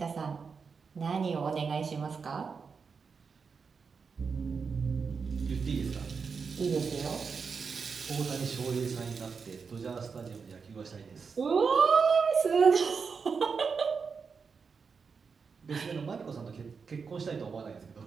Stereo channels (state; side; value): quieter; left; 5.5 dB